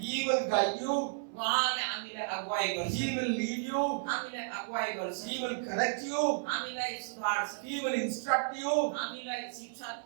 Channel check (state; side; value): silent; left; 56 dB below the other